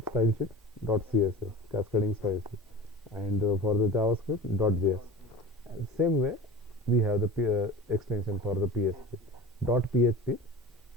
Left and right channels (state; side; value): normal; both; correlation 0.34